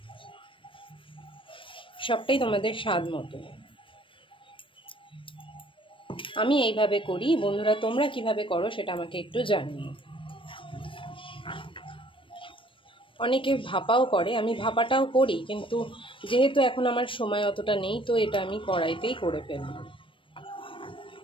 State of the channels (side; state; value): right; late; 0.25 ms